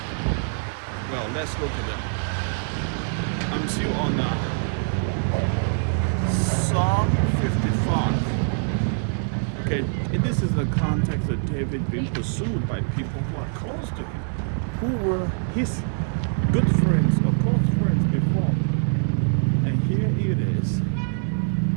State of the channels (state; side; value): silent; left; 62 dB below the other